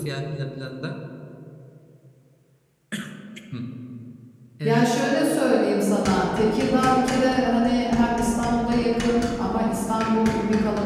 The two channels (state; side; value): identical; both; correlation 1.00